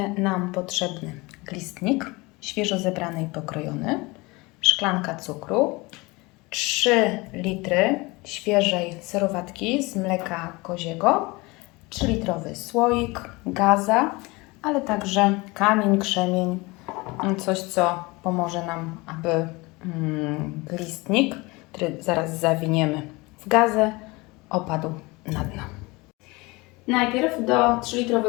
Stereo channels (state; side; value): quieter; right; 24.1 dB